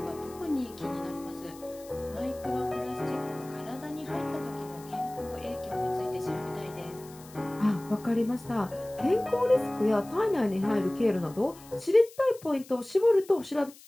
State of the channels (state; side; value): noise; left; hiss, 21 dB below the sound